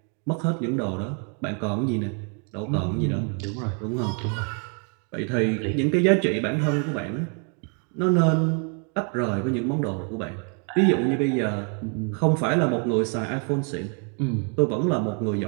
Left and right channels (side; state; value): left; quieter; 39.9 dB